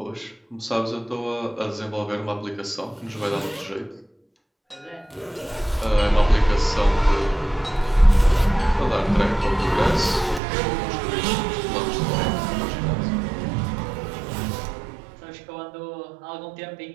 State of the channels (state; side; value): drops out; left; at 10.4 s